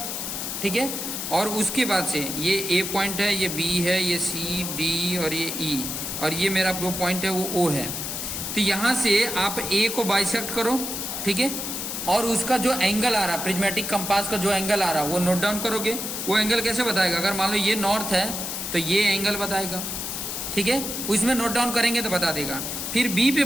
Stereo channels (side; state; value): left; noise; hiss, 4 dB below the sound